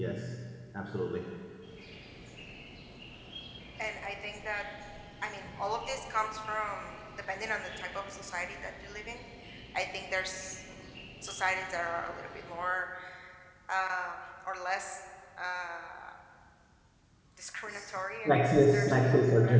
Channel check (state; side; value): identical; both; correlation 1.00